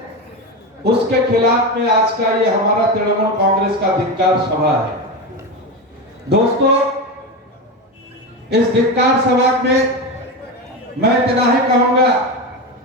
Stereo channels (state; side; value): normal; both; correlation 0.18